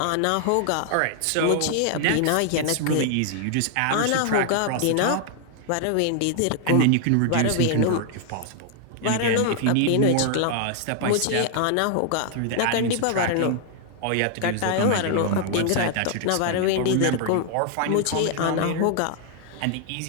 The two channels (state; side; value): different; both; correlation 0.00